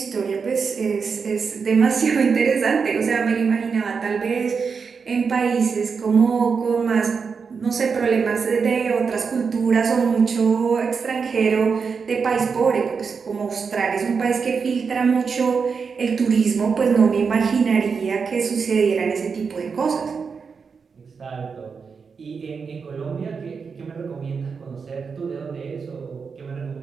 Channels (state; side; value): quieter; left; 5.6 dB